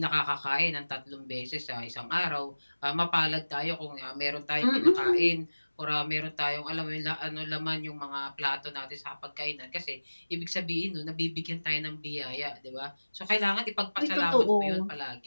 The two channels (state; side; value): inverted; both; correlation -1.00